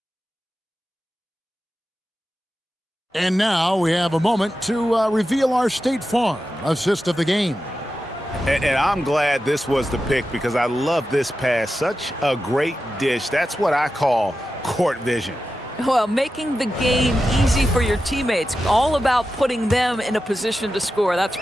And now we have a moment to reveal our State Farm assist of the game. And I'm glad this was the pick because I love this pass. Such a great dish. That's what I call court vision. Well, making the game easy for your teammates. All about putting them in a position to score. That's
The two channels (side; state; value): both; normal; correlation 0.91